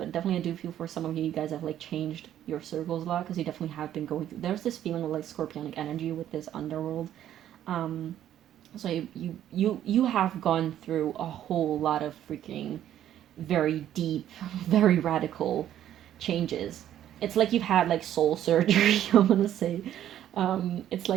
definitely I do feel for some of you guys have like changed your circles a lot, because you definitely have been going through, there's this feeling of like scorpionic energy with this underworld. So you have gone through a whole lot of freaking very deep, very radical changes. It's like you've had like soul surgery, I'm gonna say. It's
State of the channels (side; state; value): left; quieter; 11.4 dB